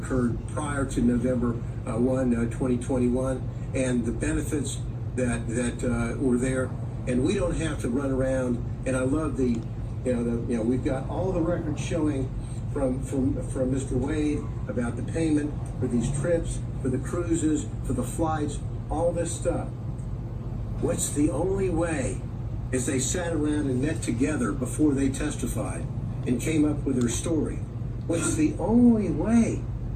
prior to November 1, 2021, and the benefits that were there, and we don't have to run around. And I love we've got all the records showing from Mr. Wade about the payment for these trips, for the cruises, for the flights, all this stuff. What's the only way, as they sat around and met together before they testified and came up with their story, what's the only way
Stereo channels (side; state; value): both; identical; correlation 1.00